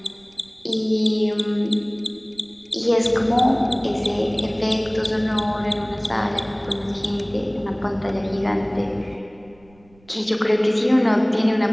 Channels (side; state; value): right; noise; rumble, 29 dB below the sound